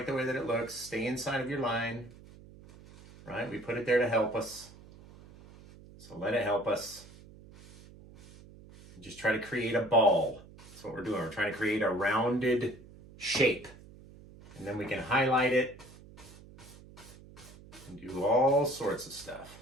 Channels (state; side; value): noise; right; hum, 20 dB below the sound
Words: the way that it looks. Stay inside of your line, right? We put it there to help us. So let it help us. Just try to create a ball. That's what we're doing. We're trying to create a rounded shape. And then we can highlight it and do all sorts of stuff.